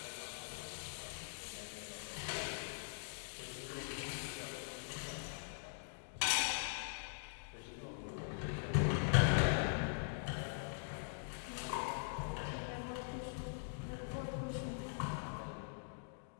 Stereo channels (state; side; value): silent; right; digital silence